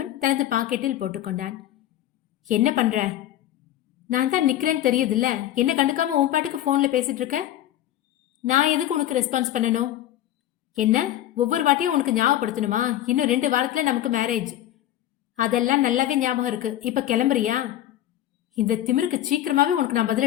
தனது பாக்கெட்டில் போட்டுக்கொண்டான். என்ன பண்ற? நான் தான் நிக்கிறேன்னு தெரியுதுல்ல, என்ன கண்டுக்காம உன் பாட்டுக்கு போன்ல பேசிட்டு இருக்க. நான் எதுக்கு உனக்கு ரெஸ்பான்ஸ் பண்ணணும்? என்ன ஒவ்வொரு வாட்டியும் உனக்கு ஞாபகப்படுத்தணுமா? இன்னும் 2 வாரத்துல நமக்கு மேரேஜ். அதெல்லாம் நல்லாவே ஞாபகம் இருக்கு. இப்ப கிளம்புறியா? இந்த திமிருக்கு சீக்கிரமாவே உனக்கு நான்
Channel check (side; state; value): right; quieter; 12.8 dB